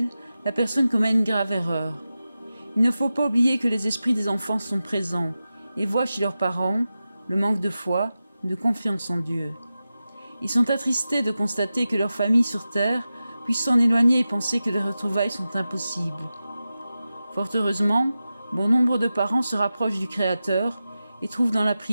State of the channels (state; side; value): inverted; both; correlation -0.93